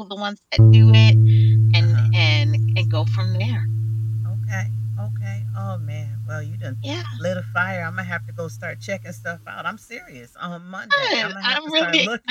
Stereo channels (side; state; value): both; identical; correlation 1.00